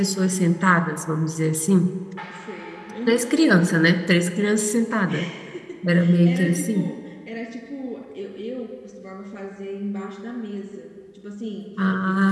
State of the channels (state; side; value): identical; both; correlation 1.00